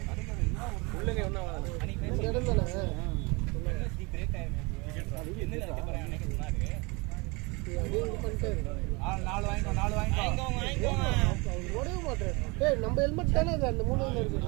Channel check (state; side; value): quieter; left; 27.1 dB